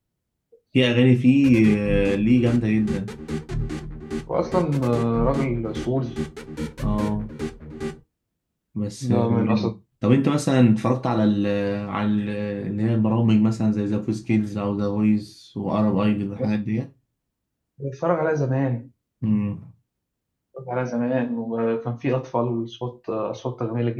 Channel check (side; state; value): both; identical; correlation 1.00